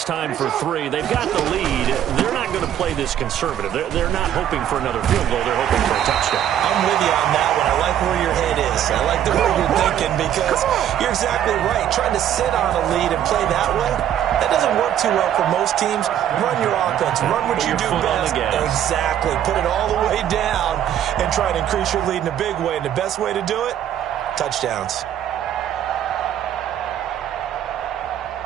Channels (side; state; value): left; quieter; 10.5 dB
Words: time for 3. They've got the lead. They're not going to play this conservative. They're not hoping for another field goal. They're hoping for a touchdown. I'm with you on that one. I like where your head is. I like the way you're thinking because you're exactly right. Trying to sit on a lead and play that way, that doesn't work too well for most teams. Run your offense. Run what you do best. Exactly. Put it all the way down and try to increase your lead in a big way. And the best way to do it, touchdowns.